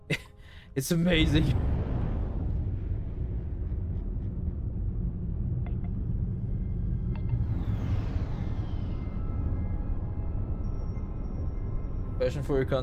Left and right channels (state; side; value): identical; both; correlation 1.00